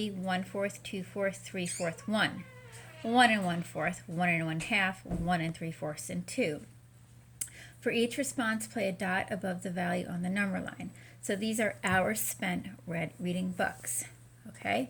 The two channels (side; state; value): both; identical; correlation 1.00